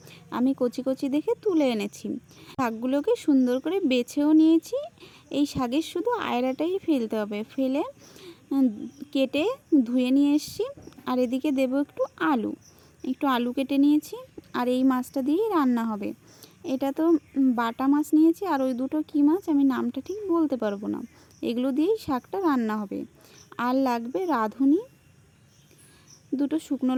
আমি কচি কচি দেখে তুলে এনেছি। শাকগুলোকে সুন্দর করে বেছেও নিয়েছি। এই শাকের শুধু আয়ড়াটাই ফেলতে হবে, ফেলে কেটে ধুয়ে নিয়ে এসেছি। আর এদিকে দেব একটু আলু কেটে নিয়েছি। আর এই মাছটা দিয়েই রান্না হবে। এটা তো বাটা মাছ নিয়েছি, আর ওই দুটো কী মাছ আমি নামটা ঠিক বলতে পারবো না। এগুলো দিয়েই শাকটা রান্না হবে। আর লাগবে রাঁধুনি, দুটো শুকনো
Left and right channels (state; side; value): identical; both; correlation 1.00